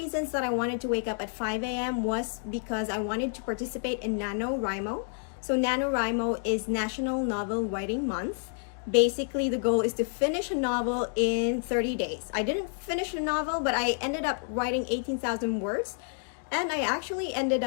that I wanted to wake up at 5 a.m. was because I wanted to participate in NaNoWriMo. So NaNoWriMo is National Novel Writing Month. Basically, the goal is to finish a novel in 30 days. I didn't finish a novel, but I ended up writing 18,000 words. And I actually ended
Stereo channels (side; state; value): right; silent; 58 dB below the other